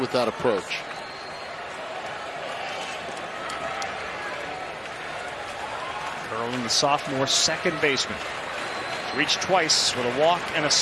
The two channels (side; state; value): both; identical; correlation 1.00